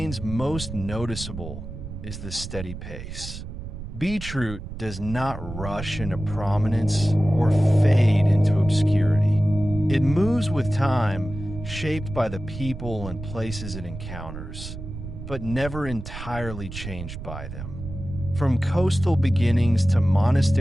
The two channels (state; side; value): noise; right; rumble, 9 dB below the sound